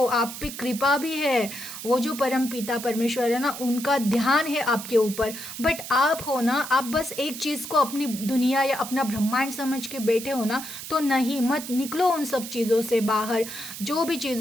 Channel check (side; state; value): right; noise; hiss, 10 dB below the sound